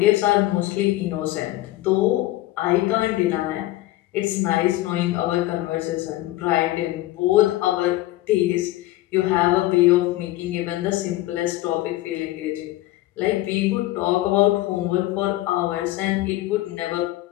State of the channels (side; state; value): right; quieter; 16.6 dB